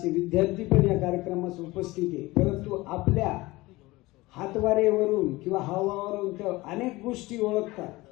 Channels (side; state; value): right; quieter; 20.5 dB